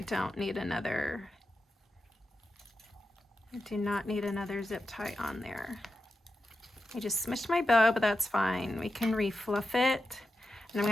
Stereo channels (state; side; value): normal; both; correlation 0.90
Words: do not need another zip tie on there. I just smushed my bow, but that's fine. We can refluff it. And I'm